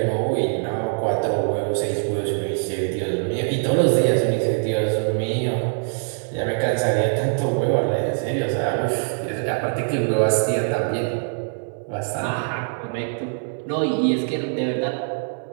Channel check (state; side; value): silent; left; 63 dB below the other